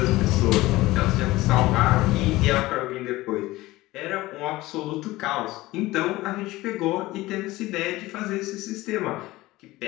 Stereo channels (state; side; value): quieter; right; 18.6 dB